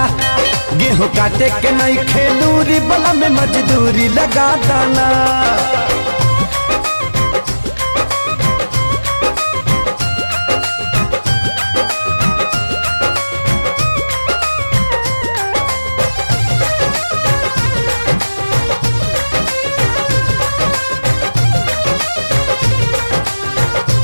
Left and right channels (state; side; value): inverted; both; correlation -1.00